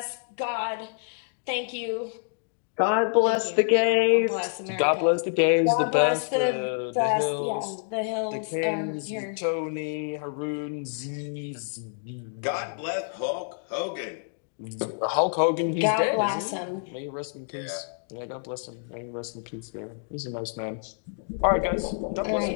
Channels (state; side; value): silent; right; digital silence